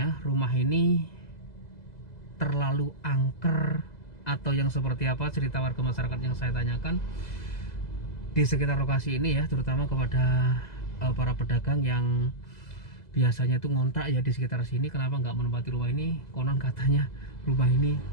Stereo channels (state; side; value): late; right; 2.0 ms